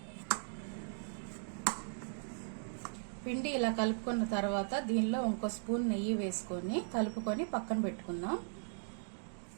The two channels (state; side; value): silent; left; digital silence